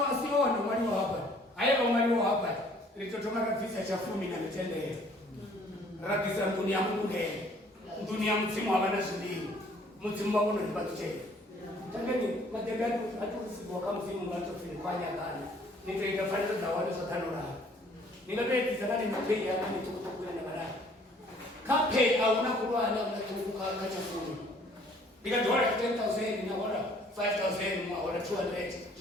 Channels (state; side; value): normal; both; correlation 0.58